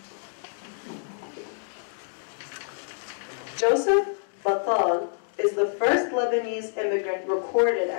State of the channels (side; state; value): right; silent; digital silence